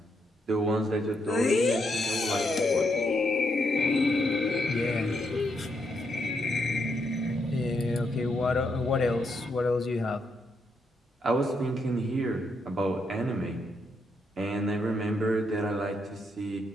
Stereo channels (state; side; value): normal; both; correlation 0.79